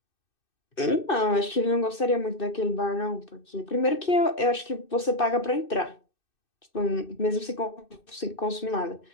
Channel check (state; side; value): late; right; 2.6 ms